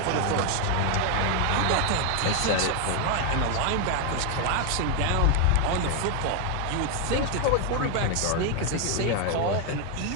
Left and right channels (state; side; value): different; both; correlation 0.01